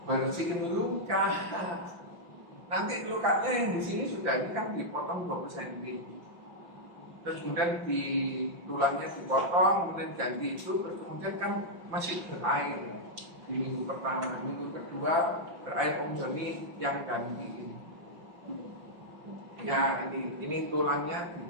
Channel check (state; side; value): late; left; 5.8 ms